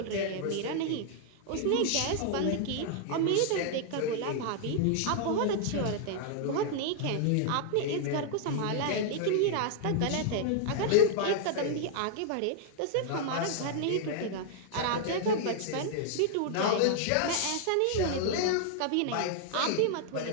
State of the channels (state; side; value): different; both; correlation -0.01